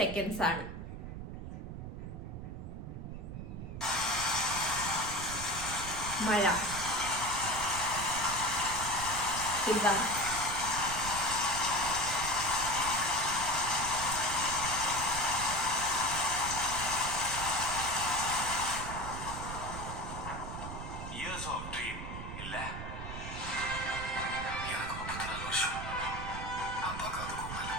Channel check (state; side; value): noise; right; rumble, 8 dB below the sound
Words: ആണ്. മഴ, Years of dream இல்ல எனக்கு 34 வருஷம் அப்பாக்கு அதுக்கும் மேல.